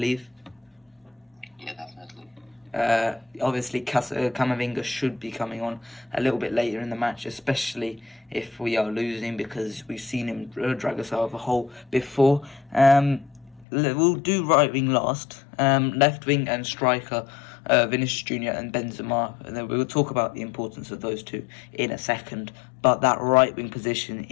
Yeah, definitely. Obviously, Camavinga should be coming on a little bit later in the match, especially if we are losing, because we've seen him drag us out of a hole before. We'll do right wing last, left wing and striker, Vinicius Jr. and Benzema, and then we'll talk about the importance of those two in a second. But that right wing position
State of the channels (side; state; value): right; drops out; at 13.7 s